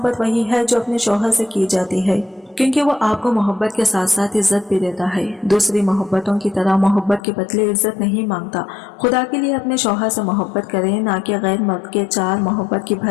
वही है जो अपने शौहर से की जाती है, क्योंकि वो आपको मोहब्बत के साथ साथ इज्जत भी देता है। दूसरी मोहब्बतों की तरह मोहब्बत के बदले इज्जत नहीं मांगता। खुदा के लिए अपने शौहर से मोहब्बत करें, ना कि गैर मर्द के 4 मोहब्बत की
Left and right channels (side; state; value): right; drops out; at 7.2 s